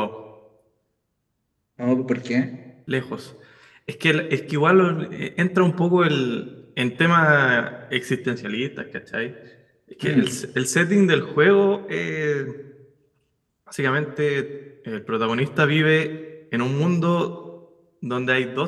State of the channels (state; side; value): identical; both; correlation 1.00